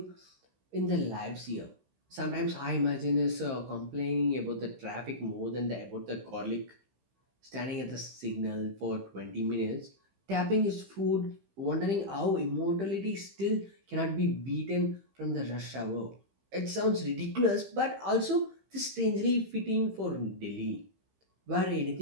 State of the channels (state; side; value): late; left; 15 ms